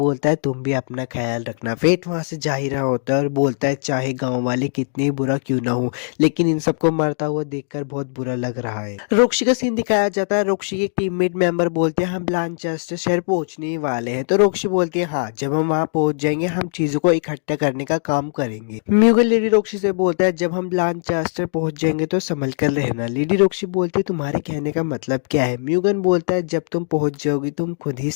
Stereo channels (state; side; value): silent; right; digital silence